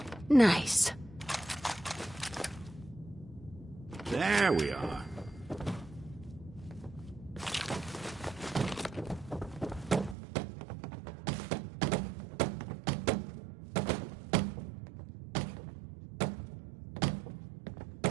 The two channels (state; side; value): drops out; left; at 10.2 s